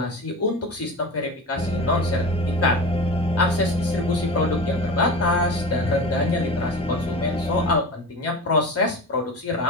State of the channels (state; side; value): normal; both; correlation 0.30